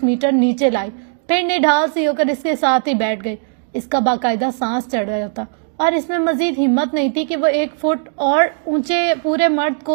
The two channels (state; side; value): silent; left; digital silence